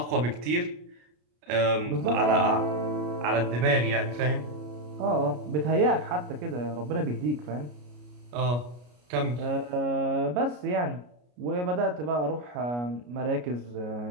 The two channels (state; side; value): late; left; 33 ms